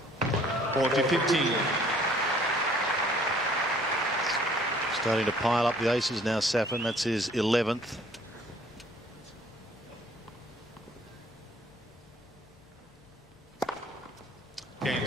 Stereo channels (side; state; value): both; normal; correlation 0.58